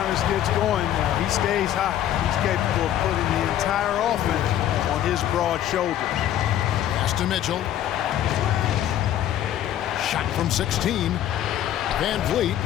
gets going, he stays hot. He's capable of putting the entire offense on his broad shoulders. Pass to Mitchell. Shot from 16. Van Vliet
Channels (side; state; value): right; quieter; 11.6 dB